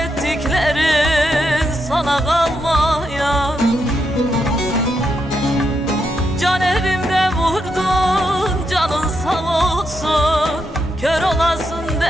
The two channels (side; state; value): both; normal; correlation 0.82